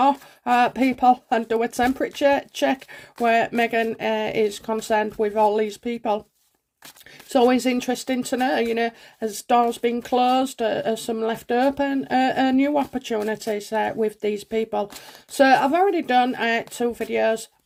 people and do a temperature check where Meghan is concerned with all these people. It's always interesting to know, as doors been closed, as some left open, new opportunities with these people. So I've already done 2 videos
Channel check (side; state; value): both; identical; correlation 1.00